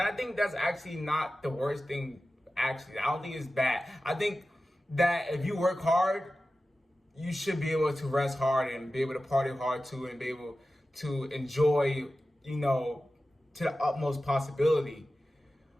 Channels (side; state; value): both; normal; correlation 0.94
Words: I think that's actually not the worst thing, actually. I don't think it's bad. I think that if you work hard, you should be able to rest hard and be able to party hard too and be able to enjoy, to the utmost possibility.